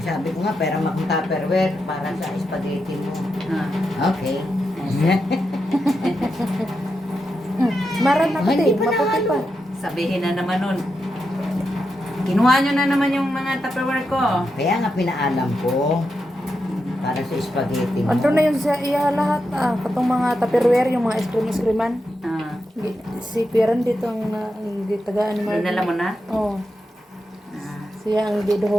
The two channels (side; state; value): both; normal; correlation 0.86